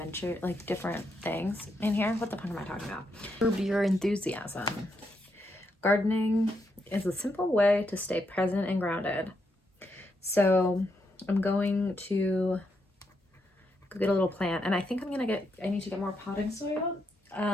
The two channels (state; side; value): normal; both; correlation 0.80